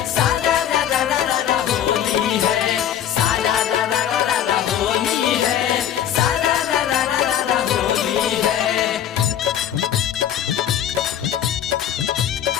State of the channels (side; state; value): right; quieter; 10.2 dB